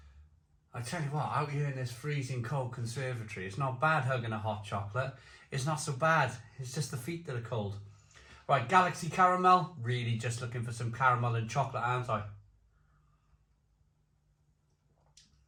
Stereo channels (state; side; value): identical; both; correlation 1.00